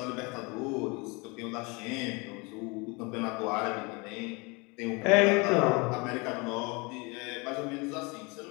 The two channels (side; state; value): right; quieter; 28.3 dB